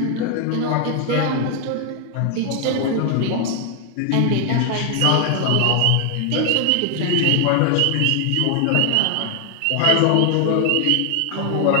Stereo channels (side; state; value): both; different; correlation 0.00